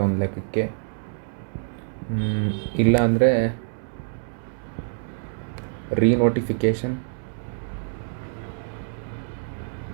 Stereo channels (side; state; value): left; silent; 61 dB below the other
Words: ಒಂದು ಲೆಕ್ಕಕ್ಕೆ. ಇಲ್ಲ ಅಂದರೆ ರೀನೋಟಿಫಿಕೇಷನ್